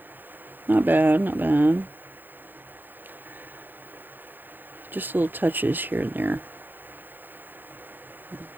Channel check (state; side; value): late; left; 0.090 ms